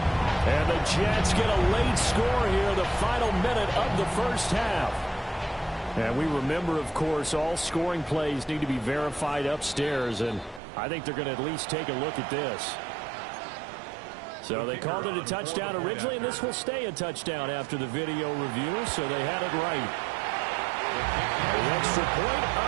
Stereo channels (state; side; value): drops out; left; at 10.6 s